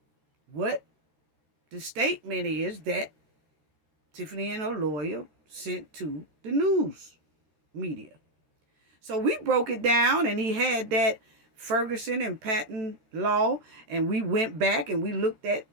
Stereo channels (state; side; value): late; left; 13 ms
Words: what the statement is that Tiffany and her lawyer sent to the news media. So we broke it down, and he had that Ferguson and Patton law, and we went back and we looked at